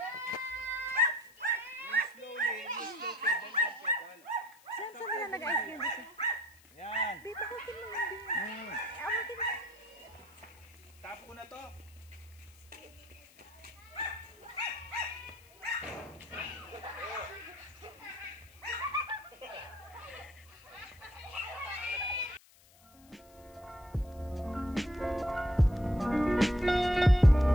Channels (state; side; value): noise; left; hiss, 27 dB below the sound